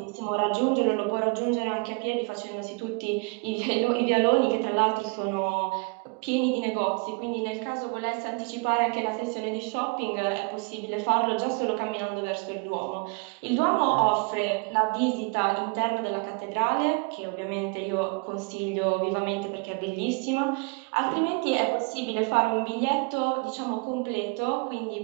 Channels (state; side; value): quieter; left; 31.6 dB